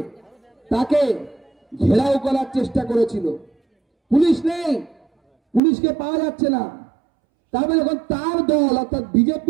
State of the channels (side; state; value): left; drops out; at 5.6 s